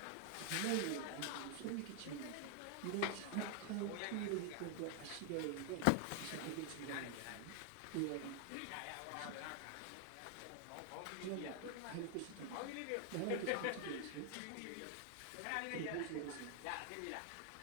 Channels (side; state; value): both; different; correlation 0.00